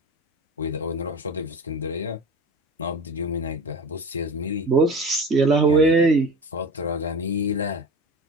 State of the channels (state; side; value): normal; both; correlation 0.33